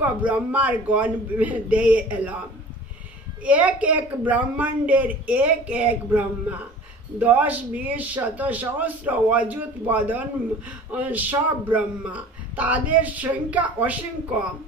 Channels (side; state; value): both; normal; correlation 0.43